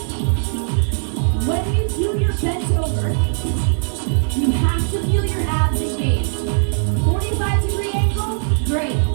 When you do your bent over, you have to feel your abs engaged. 45-degree angle, great.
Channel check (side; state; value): left; silent; 65 dB below the other